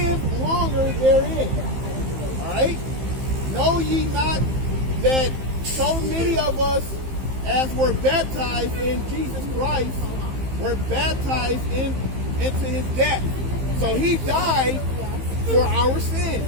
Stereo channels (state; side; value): late; left; 15 ms